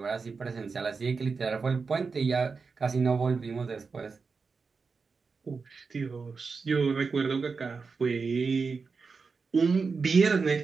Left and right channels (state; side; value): quieter; left; 4.8 dB